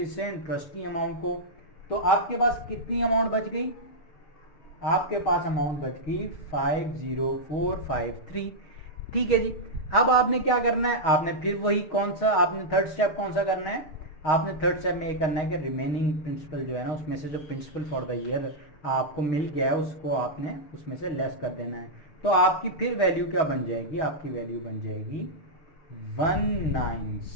इंटरेस्ट की अमाउंट को। तो आपके पास कितनी अमाउंट बच गई, आपके पास अमाउंट बच गई 50453। ठीक है जी। अब आपने क्या करना है, आपने फिर वही कौन सा, आपने थर्ड स्टेप कौन सा करना है, आपने थर्ड स्टेप में ये करना है कि रिमेनिंग प्रिंसिपल जो है ना, उसमें से जो प्रिंसिपल फॉर द ईयर आपको मिल गया है उसको आपने उसमें से लेस कर देना है। तो आपकी फिर वैल्यू क्या बन जाएगी, आपकी वैल्यू बन जाएगी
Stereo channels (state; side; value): late; right; 6.3 ms